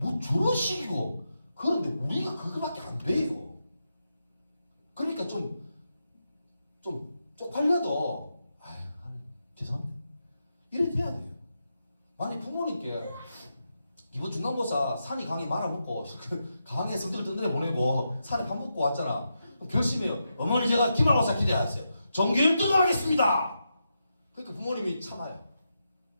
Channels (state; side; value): inverted; both; correlation -0.86